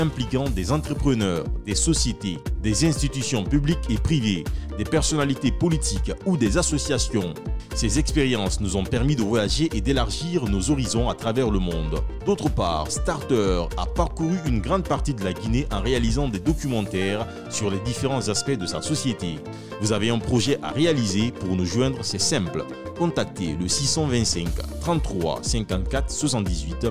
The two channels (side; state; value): both; identical; correlation 1.00